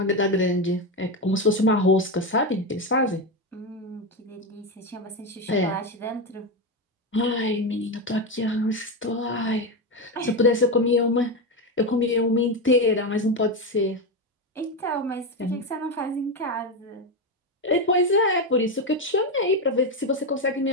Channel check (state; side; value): normal; both; correlation 0.12